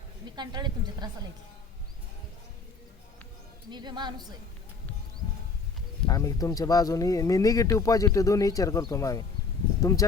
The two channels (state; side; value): quieter; right; 4.5 dB